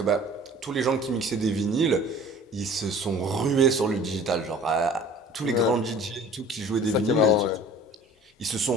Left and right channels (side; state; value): both; normal; correlation 0.46